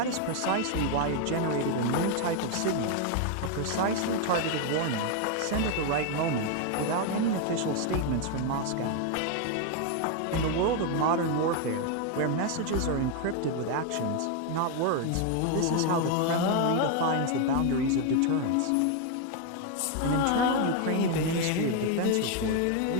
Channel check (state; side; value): different; both; correlation 0.01